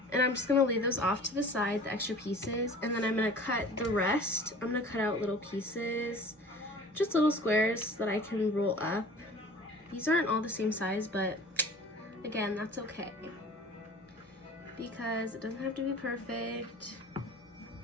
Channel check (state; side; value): normal; both; correlation 0.44